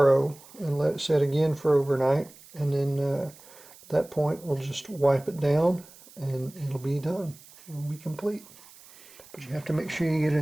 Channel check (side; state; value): right; noise; hiss, 22 dB below the sound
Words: and let it set again for overnight, and then at that point we'll just wipe it down and it'll be done. It'll be complete. But you have to make sure you get